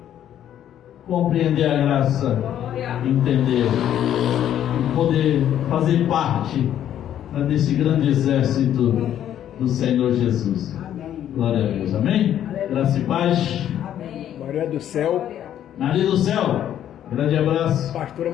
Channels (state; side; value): quieter; right; 10.7 dB